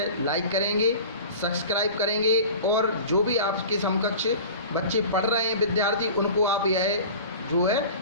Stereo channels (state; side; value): inverted; both; correlation -0.38